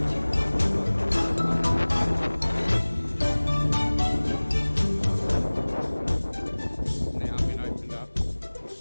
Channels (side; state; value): both; inverted; correlation -1.00